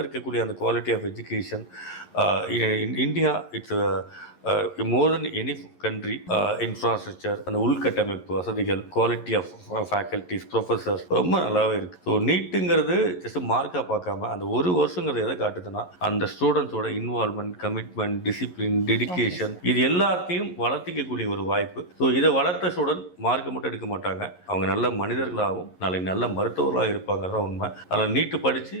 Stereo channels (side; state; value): right; late; 11 ms